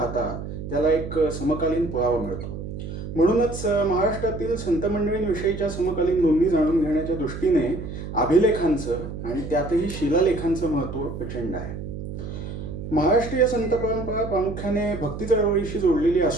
त्याला एक समकालीन पुरावा मिळतो. म्हणूनच महाराष्ट्रातील संत मंडळींविषयीच्या समकालीन नोंदी जाणून घेण्याच्या दृष्टीने अभिलेखांचं आणि त्यातही शिलालेखांचं महत्त्व प्रचंड आहे. महाराष्ट्रीय संत परंपरा प्रामुख्याने भक्ती चळवळीशी जोडलेली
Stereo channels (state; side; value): noise; right; hum, 8 dB below the sound